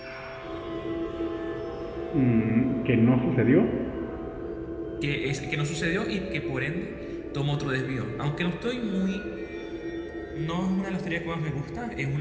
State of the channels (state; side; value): identical; both; correlation 1.00